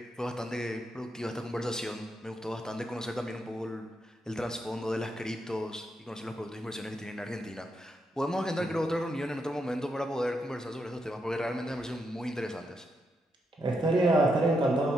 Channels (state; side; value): normal; both; correlation 0.81